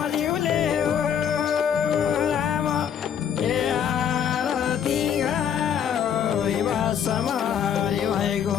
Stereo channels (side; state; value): right; quieter; 8.4 dB